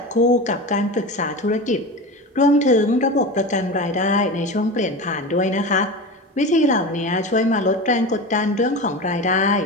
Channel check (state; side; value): normal; both; correlation 0.27